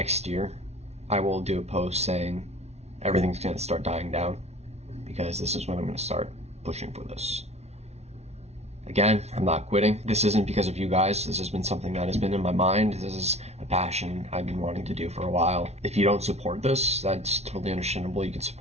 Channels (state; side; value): late; left; 0.31 ms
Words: year, I will do a post saying everything's going to start dying down, because this is when I'm going to start pushing for this. Again, I'm not quitting. This isn't because of you guys. This has been something that has been in my mind. This is a passion I've been wanting to do for a while. If you don't support this, that's totally understandable. You can